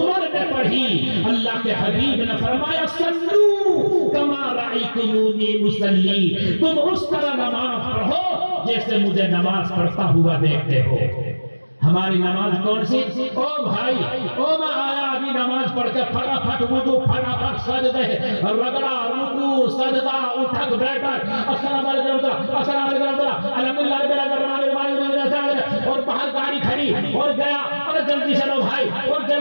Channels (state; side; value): inverted; both; correlation -1.00